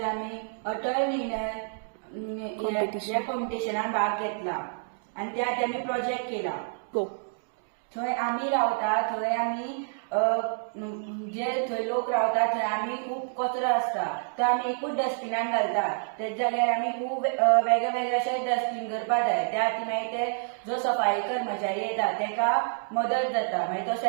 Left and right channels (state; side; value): silent; left; digital silence